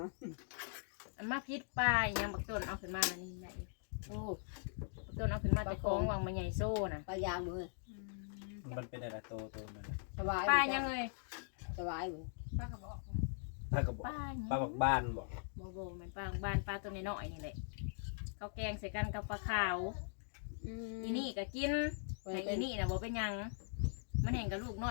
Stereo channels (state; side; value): silent; right; digital silence